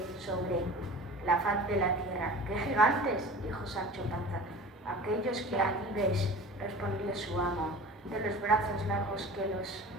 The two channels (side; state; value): both; normal; correlation 0.38